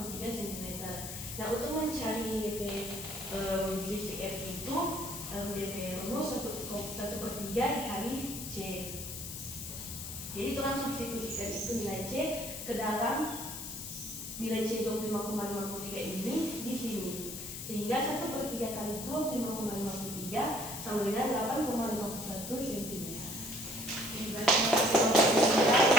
cm. Nah, untuk mencari DP sisi F itu DP rumus 1/3 dikali C. Jadi itu langsung substitusikan itu nilai C ke dalam nilai C 25,53 ini di sini. Sehingga 1/3 kali 25,53 sama dengan 8,51 cm.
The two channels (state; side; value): noise; left; hiss, 8 dB below the sound